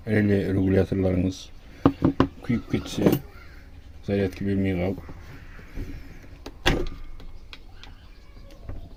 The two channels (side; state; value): both; identical; correlation 1.00